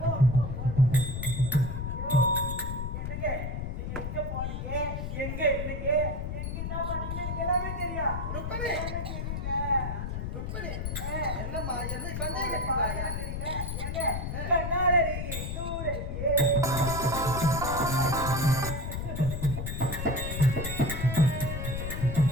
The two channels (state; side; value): noise; left; rumble, 4 dB below the sound